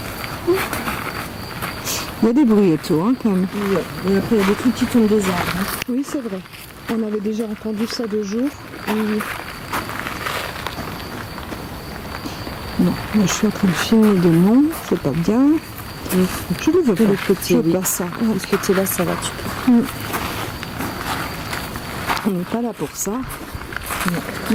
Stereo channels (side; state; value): both; identical; correlation 1.00